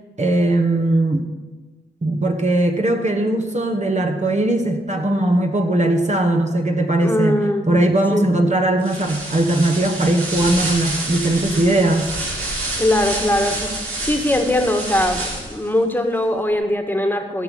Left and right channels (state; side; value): normal; both; correlation 0.74